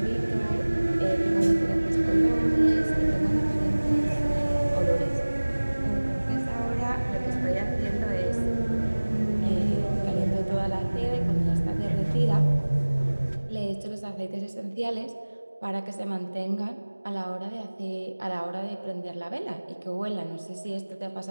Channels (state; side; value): inverted; both; correlation -1.00